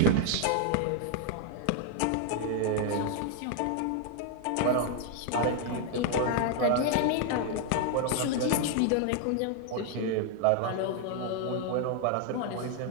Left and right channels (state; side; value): different; both; correlation 0.00